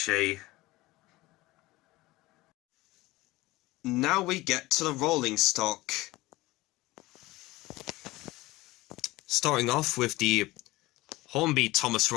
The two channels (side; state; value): right; quieter; 19.4 dB